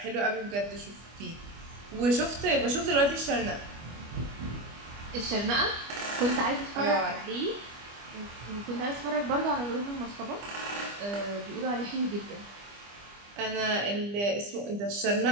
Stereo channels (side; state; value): left; late; 25 ms